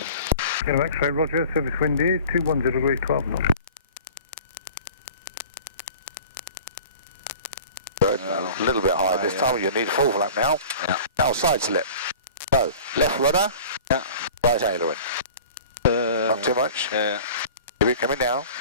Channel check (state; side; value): inverted; both; correlation -0.42